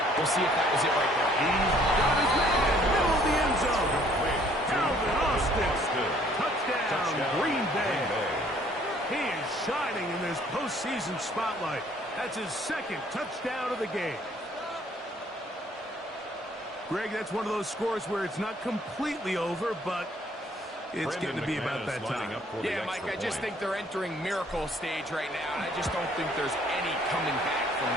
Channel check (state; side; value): normal; both; correlation 0.61